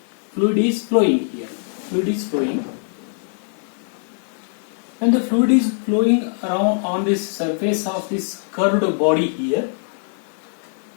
Fluid is flowing here. Fluid is flowing. When the fluid is flowing around on this surface of this curved body here,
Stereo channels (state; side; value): silent; right; digital silence